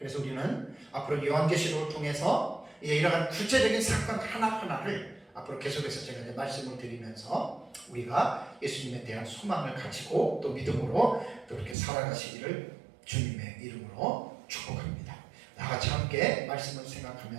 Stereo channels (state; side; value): drops out; left; at 11.8 s